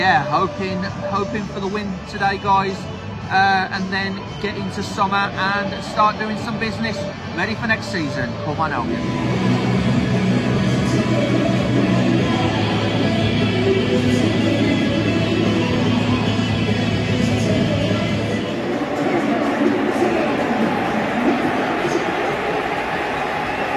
hoping for the win today, guys. And then get into summer and start doing some business, ready for next season. Come on, Albion.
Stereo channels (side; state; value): both; identical; correlation 1.00